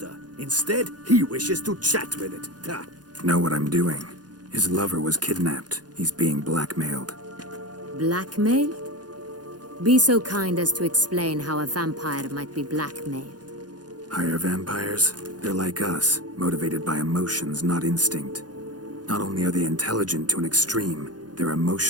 Instead, he wishes to chat with it. Ha! Know what I'm doing. His lover was kidnapped. He's being blackmailed. Blackmailed? Be so kind as to explain how a vampire might be blackmailed. Higher vampires? They're like us, motivated by emotions, not instinct. Not only are they intelligent to an extreme, they're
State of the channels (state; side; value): late; left; 0.69 ms